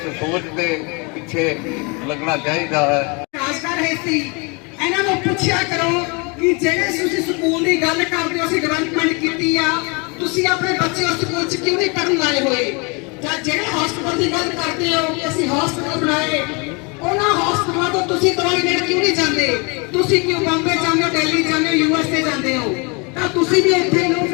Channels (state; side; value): quieter; right; 30.9 dB